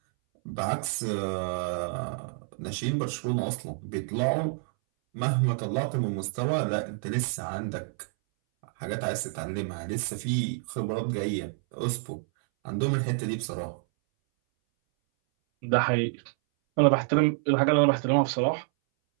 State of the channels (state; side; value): silent; left; 59 dB below the other